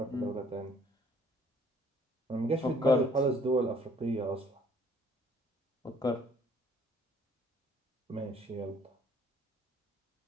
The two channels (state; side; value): normal; both; correlation 0.60